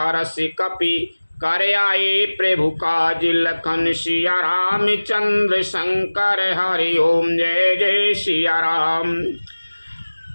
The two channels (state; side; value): inverted; both; correlation -1.00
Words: कपि करे आए प्रभु काज, लखन सिया रामचंद्र शंकर हरि ओम जय जय सिया राम।